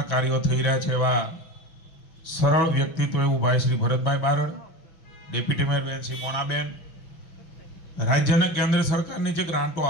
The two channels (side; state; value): right; late; 6.2 ms